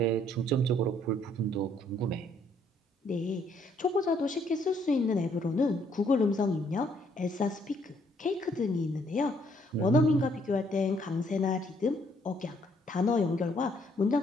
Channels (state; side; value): normal; both; correlation 0.67